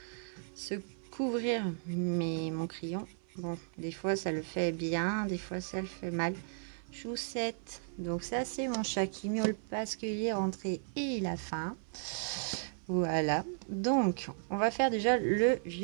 se couvrir mon crayon. Bon, des fois ça le fait bien, des fois ça le fait mal. Choussette. Donc ça c'est mon chat qui miaule parce qu'il est rentré et il a faim. Voilà. Donc on va faire déjà le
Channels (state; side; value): silent; left; 54 dB below the other